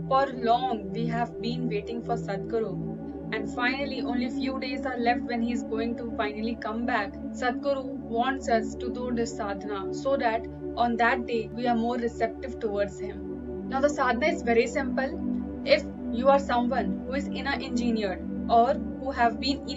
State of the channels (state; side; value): identical; both; correlation 1.00